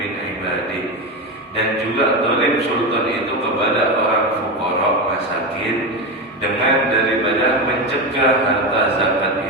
ibadi. Dan juga zalim sultan itu kepada orang fuqara masakin dengan daripada mencegah harta zakat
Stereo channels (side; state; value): both; normal; correlation 0.17